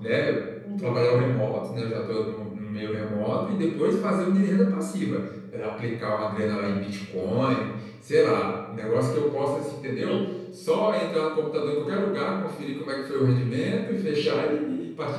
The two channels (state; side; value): identical; both; correlation 1.00